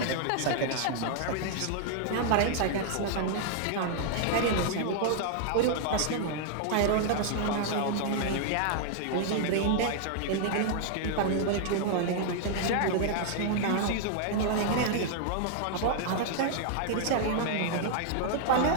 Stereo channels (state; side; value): different; both; correlation -0.01